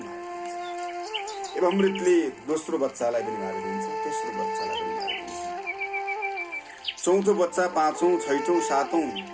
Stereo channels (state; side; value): identical; both; correlation 1.00